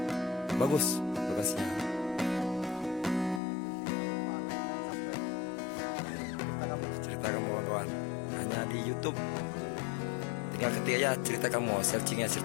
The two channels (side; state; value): right; drops out; at 3.4 s